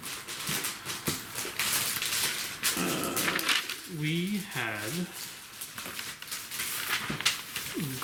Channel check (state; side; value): identical; both; correlation 1.00